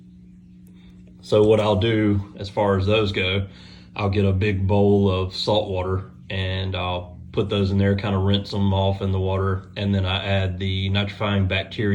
So what I'll do as far as those go, I'll get a big bowl of salt water and I'll put those in there, kind of rinse them off in the water, and then I add the nitrifying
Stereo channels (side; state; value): both; identical; correlation 1.00